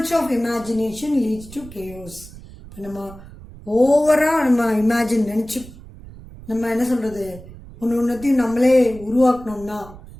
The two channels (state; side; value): noise; right; rumble, 18 dB below the sound